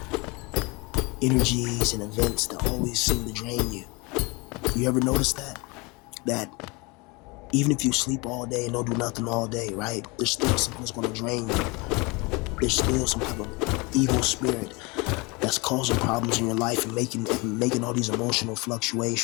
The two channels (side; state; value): right; quieter; 26.9 dB